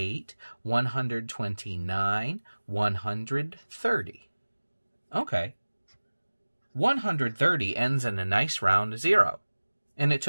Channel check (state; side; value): inverted; both; correlation -1.00